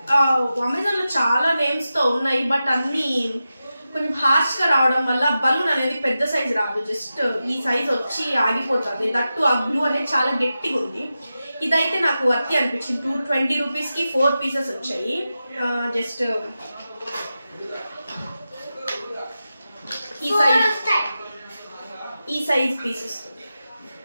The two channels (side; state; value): both; inverted; correlation -0.92